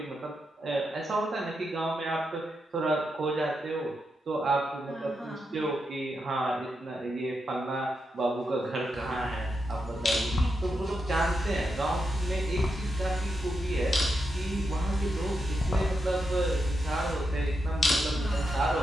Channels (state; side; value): normal; both; correlation 0.85